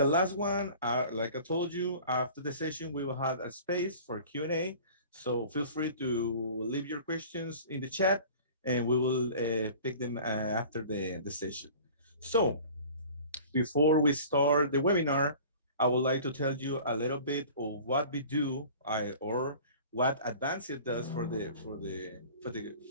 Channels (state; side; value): inverted; both; correlation -0.44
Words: last one, like I told you, after the session, we will have a space for Q&A. So feel free to leave your questions in the chat, and we will pick them after the session. So before we start the webinar, I would like to tell you a little bit of what we do or what Advancio does for